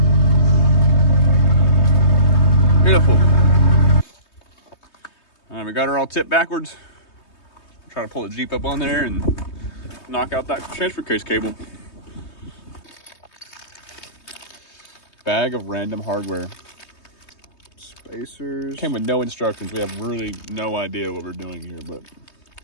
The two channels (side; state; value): right; late; 3.2 ms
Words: Beautiful. All right, we got her all tipped backwards. Try to pull the Jeep up on there and knock out that transfer case cable. Bag of random hardware. Spacers. Came with no instructions. We have really no idea what we're doing here, but